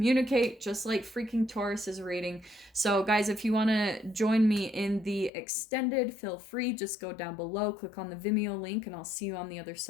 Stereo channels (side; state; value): right; drops out; at 5.3 s